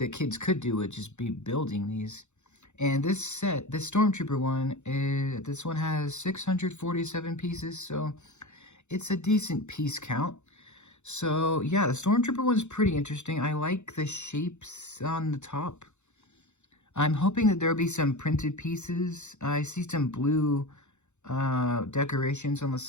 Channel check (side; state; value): right; late; 0.83 ms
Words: kids could do would just be building these. And this set, this Stormtrooper one, this one has 647 pieces, so it's a decent piece count. So yeah, the Stormtrooper one's pretty interesting. I like the shapes on the top. I'm hoping that there'll be some printed pieces. I see some blue decorations on the